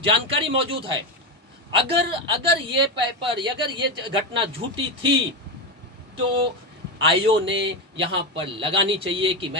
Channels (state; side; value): normal; both; correlation 0.13